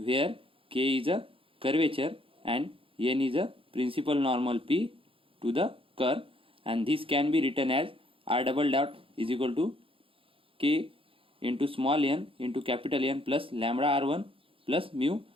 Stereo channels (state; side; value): late; left; 0.26 ms